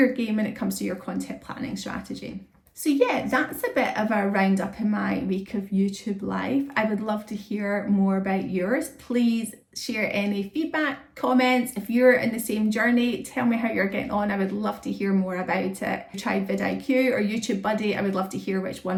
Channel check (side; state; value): both; identical; correlation 1.00